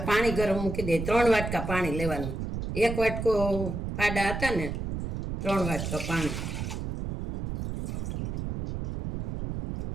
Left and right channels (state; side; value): noise; right; rumble, 4 dB below the sound